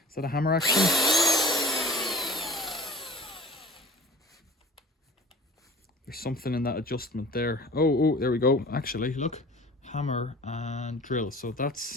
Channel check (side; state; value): both; normal; correlation 0.42